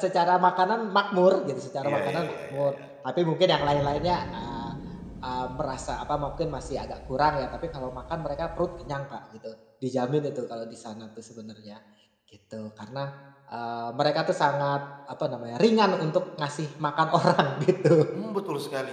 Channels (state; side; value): identical; both; correlation 1.00